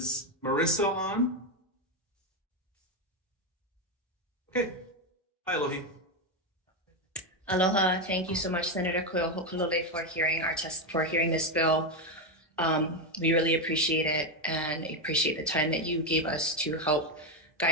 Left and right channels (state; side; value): normal; both; correlation 0.08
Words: Marissa on? Okay. Hi, Alohi. Aloha. Thank you so much, Senator Ho'okalole, for hearing this bill. We really appreciate it and appreciate the time that you gave us to help